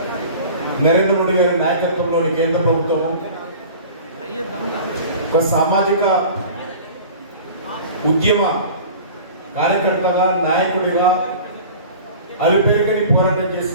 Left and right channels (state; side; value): inverted; both; correlation -0.41